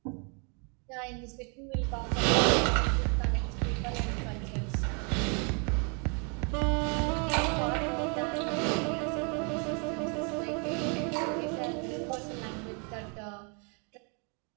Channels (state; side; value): quieter; left; 36.4 dB